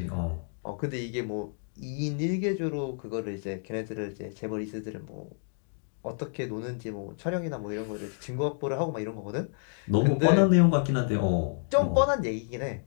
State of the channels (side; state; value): right; silent; 58 dB below the other